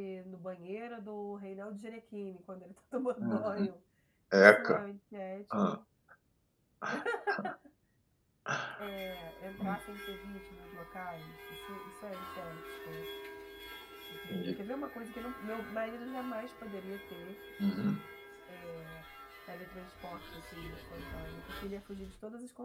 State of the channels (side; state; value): both; identical; correlation 1.00